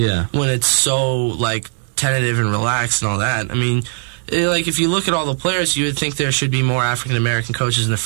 When it's so tentative and relaxed and all that. I mean, if you look at all the players, you would think there should be more African American coaches in the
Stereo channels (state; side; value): silent; left; digital silence